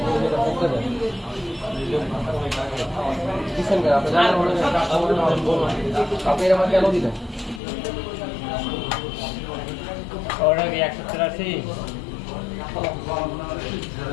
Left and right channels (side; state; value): right; drops out; at 7.6 s